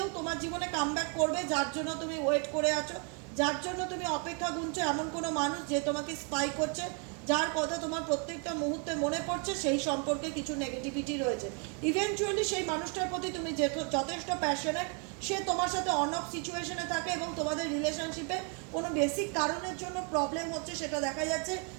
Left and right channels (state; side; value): quieter; left; 38.0 dB